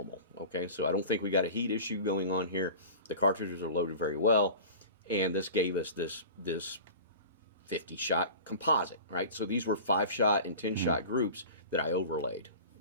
okay? So I don't think we got a heat issue going on here. The cartridges are loaded very well, and this gave us this 50-shot composite, right? So these were 5-shot and 10-shot groups that I overlaid,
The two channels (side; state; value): both; inverted; correlation -0.37